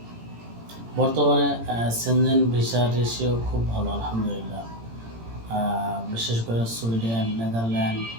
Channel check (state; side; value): late; left; 18 ms